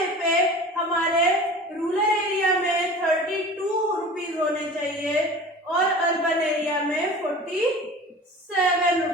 पे हमारे रूरल एरिया में 32 रुपीज होने चाहिए और अर्बन एरिया में 47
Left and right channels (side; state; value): both; normal; correlation 0.39